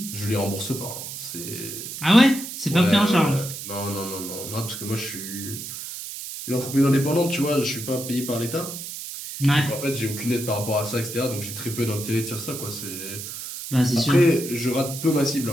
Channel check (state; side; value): noise; right; hiss, 8 dB below the sound